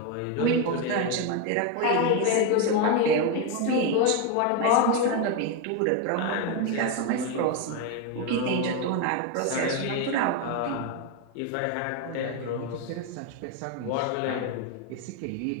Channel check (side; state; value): both; different; correlation 0.02